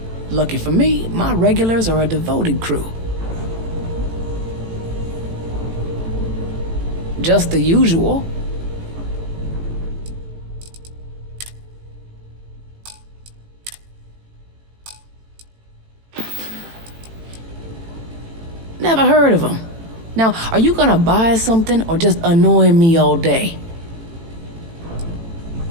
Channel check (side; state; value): left; late; 18 ms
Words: Lucky for me, my regulars are a devoted crew. Just the usual. Never heard of them. Now, are you gonna buy something or just annoy me all day?